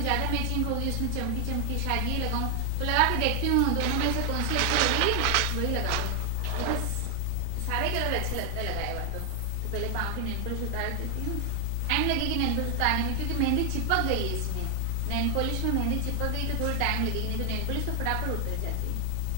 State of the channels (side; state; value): both; different; correlation 0.00